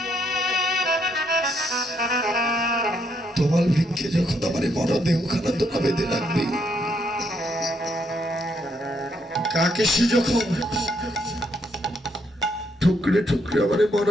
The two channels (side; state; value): both; normal; correlation 0.74